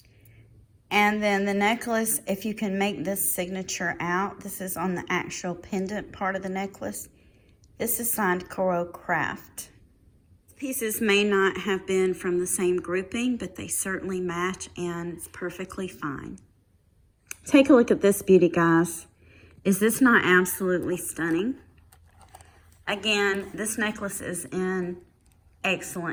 And then the necklace, if you can make this signature out, this is on the actual pendant part of the necklace. This is signed Coro Craft. Pieces may not have been from the same grouping, but they certainly match and it's perfectly fine. Take a look at this beauty, guys. Is this not absolutely stunning? Again, this necklace is in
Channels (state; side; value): identical; both; correlation 1.00